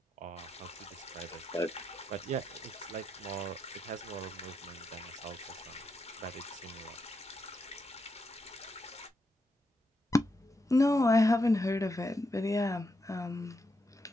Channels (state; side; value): normal; both; correlation 0.82